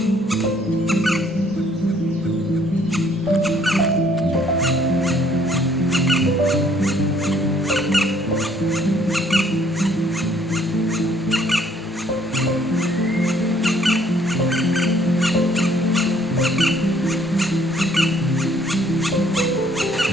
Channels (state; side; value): normal; both; correlation 0.63